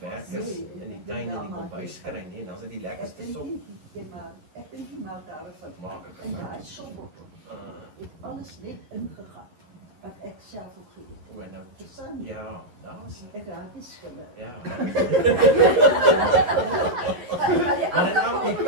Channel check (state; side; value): late; left; 11 ms